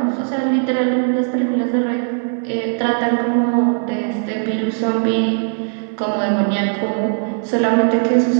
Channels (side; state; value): left; silent; digital silence